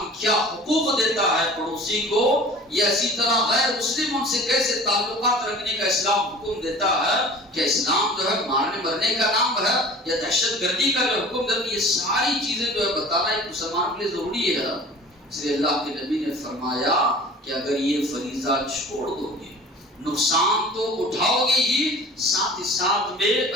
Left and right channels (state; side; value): normal; both; correlation 0.43